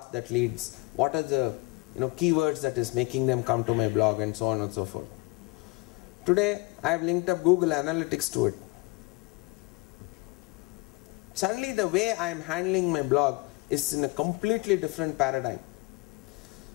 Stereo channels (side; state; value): right; quieter; 24.5 dB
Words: that leads, what are the, keywords that is making them come to my blog, and so on and so forth. Today, I have linked up Google Analytics to it. Suddenly, the way I am handling my blog is in a completely different paradigm.